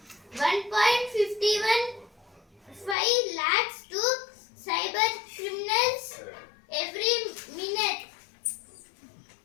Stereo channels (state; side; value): drops out; right; at 3.0 s